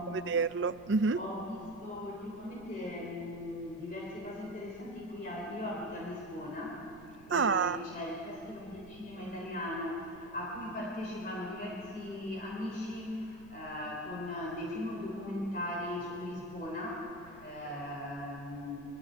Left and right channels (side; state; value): right; noise; rumble, 21 dB below the sound